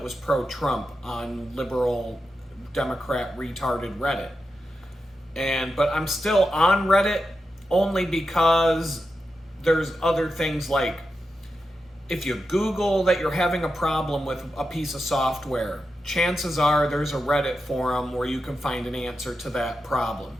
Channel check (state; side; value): normal; both; correlation 0.89